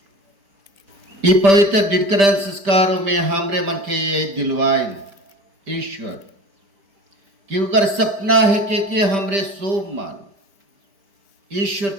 ये पवित्र डिडकरण संस्कारों में हमरे मन के ये दिलवाए ईश्वर कि उनका सपना है कि हमरे सोम मान ईश्वर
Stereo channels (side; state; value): left; late; 5.1 ms